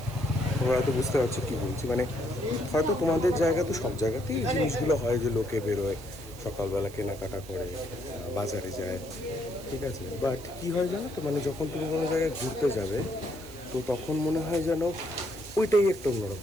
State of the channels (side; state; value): right; noise; hiss, 19 dB below the sound